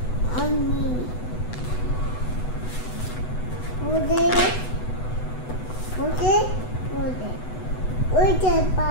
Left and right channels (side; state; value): right; late; 8.0 ms